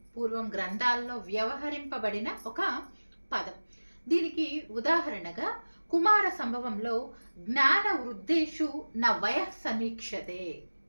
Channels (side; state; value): both; inverted; correlation -1.00